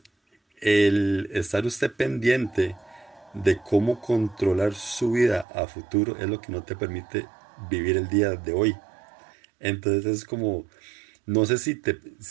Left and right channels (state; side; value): drops out; left; at 5.5 s